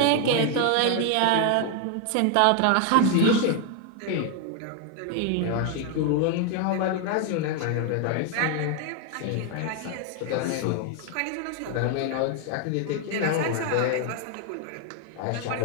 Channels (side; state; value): both; different; correlation 0.00